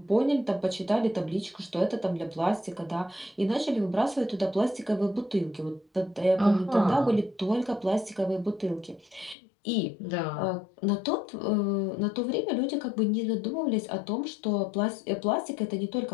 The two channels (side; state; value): right; drops out; at 9.3 s